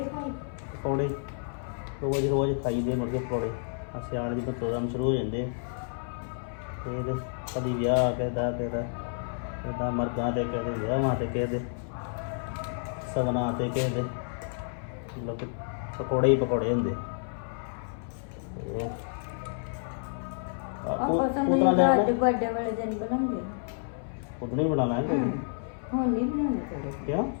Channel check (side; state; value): right; silent; 58 dB below the other